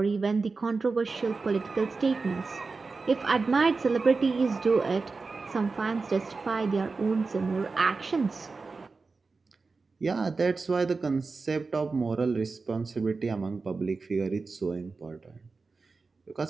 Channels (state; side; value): quieter; left; 4.2 dB